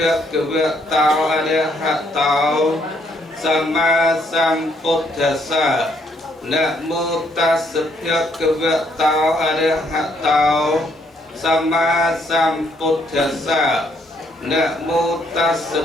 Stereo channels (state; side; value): normal; both; correlation 0.70